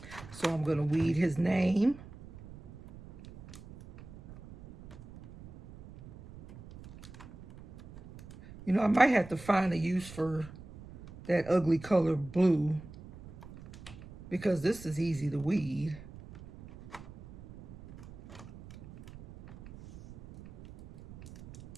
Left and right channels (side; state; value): right; noise; rumble, 17 dB below the sound